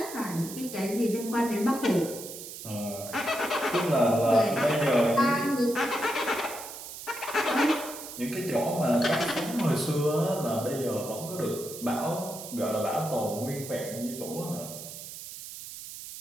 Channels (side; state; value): right; noise; hiss, 11 dB below the sound